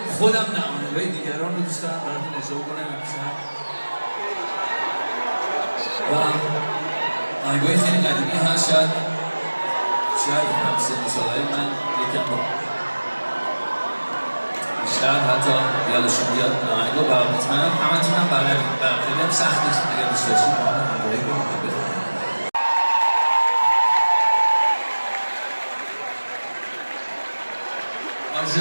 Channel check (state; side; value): inverted; both; correlation -1.00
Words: خودم نه آهنگای دیگران رو دوست دارم براتون اجرا کنم امشب و آهنگای خیلی قدیمی هست شاید هم سن سالهای من یکم رو بیشتر حتی یادشون بیاد آهنگا و مطمئنم همتون هم بلدید برام خیلی هم سخت نیست اگر دوست داشتید با هم همراهی کنید بخونید